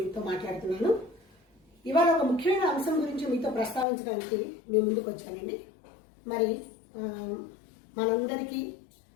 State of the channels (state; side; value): drops out; right; at 3.9 s